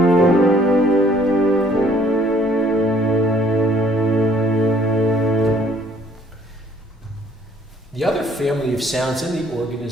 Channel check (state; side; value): normal; both; correlation 0.61